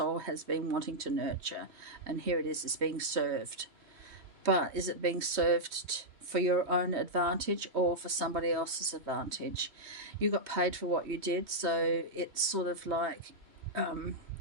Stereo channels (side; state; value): left; late; 3.1 ms